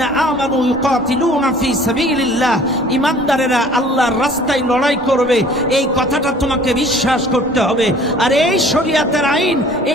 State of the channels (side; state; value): both; normal; correlation 0.51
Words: আমানু ইউকাতিলুনা ফি সাবিলিল্লাহ, ইমানদারেরা আল্লাহর রাস্তায় লড়াই করবে, এই কথাটা তোমাকে বিশ্বাস করতে হবে। আর এই শরীয়তের আইন,